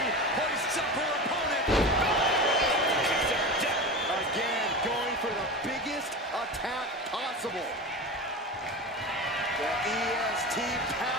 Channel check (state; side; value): normal; both; correlation 0.27